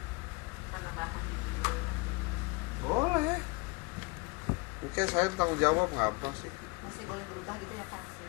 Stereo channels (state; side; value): quieter; right; 28.1 dB